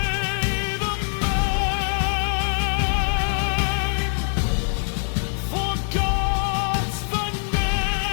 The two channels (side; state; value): right; silent; 58 dB below the other